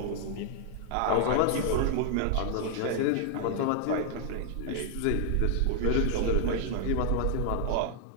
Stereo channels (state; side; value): different; both; correlation -0.01